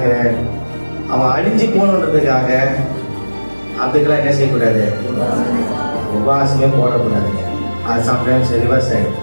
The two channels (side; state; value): both; inverted; correlation -1.00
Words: அவன் அழிஞ்சு போகணுன்றதுக்காக அதுக்கெல்லாம் என்ன செய்யக்கூடாது? உபவாசமே போடக்கூடாதுங்க. அது சம்டைம்ஸ்